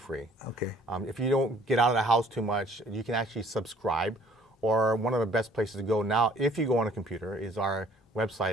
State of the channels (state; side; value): normal; both; correlation 0.57